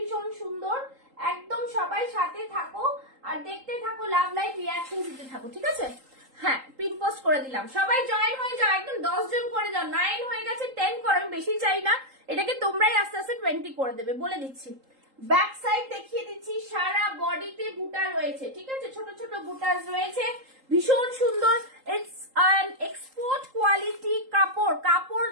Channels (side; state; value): left; late; 3.8 ms